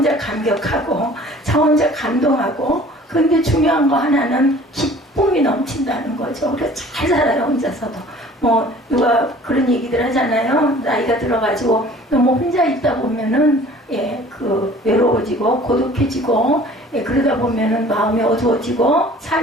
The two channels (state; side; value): normal; both; correlation 0.49